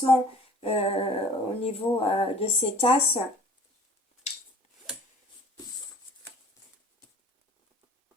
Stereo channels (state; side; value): normal; both; correlation 0.50